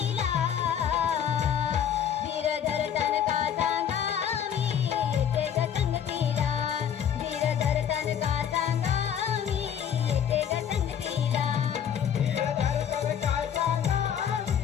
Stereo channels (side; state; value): right; quieter; 8.8 dB